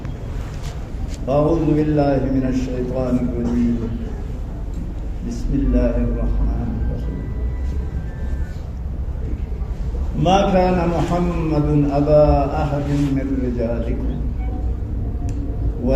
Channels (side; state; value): both; identical; correlation 1.00